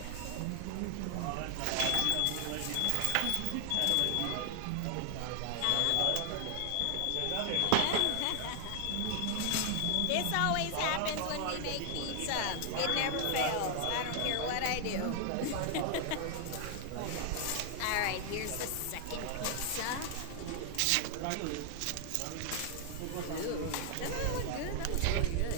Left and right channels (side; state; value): both; different; correlation 0.00